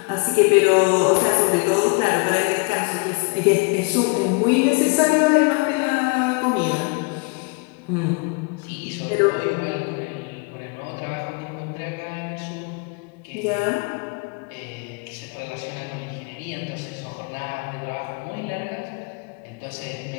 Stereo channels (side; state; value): right; quieter; 30.8 dB